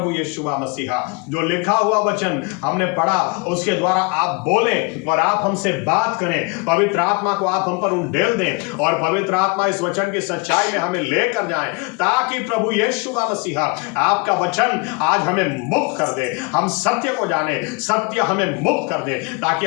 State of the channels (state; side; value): quieter; right; 30.0 dB